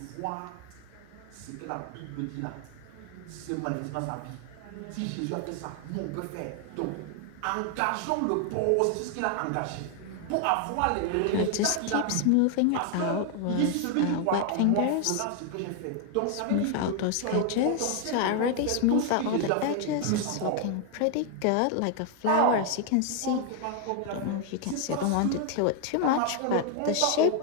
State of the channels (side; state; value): both; different; correlation 0.00